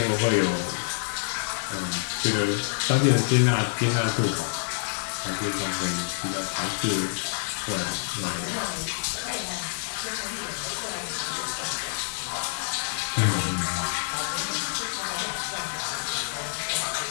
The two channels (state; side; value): silent; right; digital silence